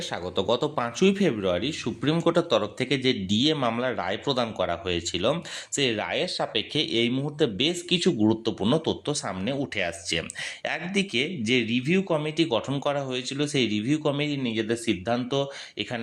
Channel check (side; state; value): both; identical; correlation 1.00